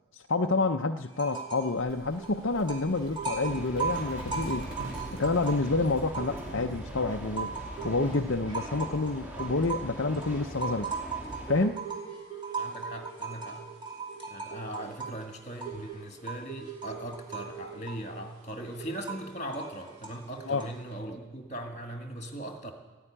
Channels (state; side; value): normal; both; correlation 0.08